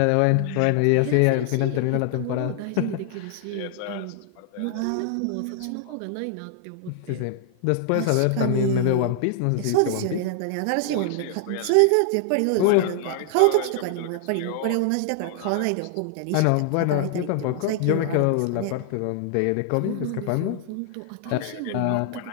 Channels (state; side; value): different; both; correlation 0.00